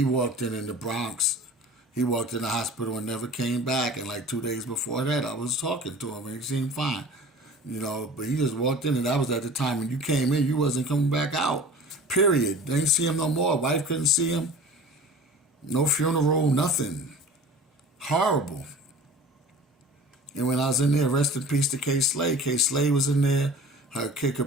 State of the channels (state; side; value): normal; both; correlation 0.41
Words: walked in the Bronx. He walked in the hospital and never came back. And like 2 days before that, I was talking to him and he seemed fine, but he just walked in and that was at the time when you came in, you wasn't coming back out, period. They didn't see him no more. Wife couldn't see him. No funeral, nothing. Horrible. And when I was in there, rest in peace to K. Slay. K. Slay was in there. Her Kid